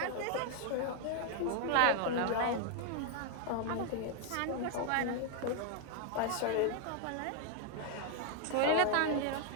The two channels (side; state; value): both; different; correlation 0.00